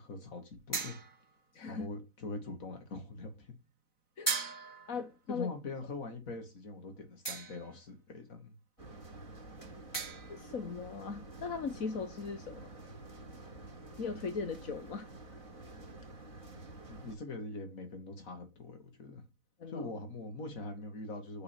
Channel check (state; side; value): late; right; 4.0 ms